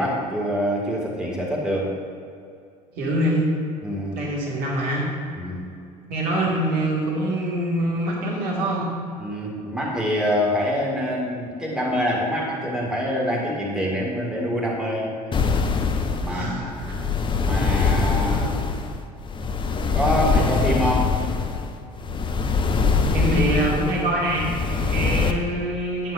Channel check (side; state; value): both; normal; correlation 0.50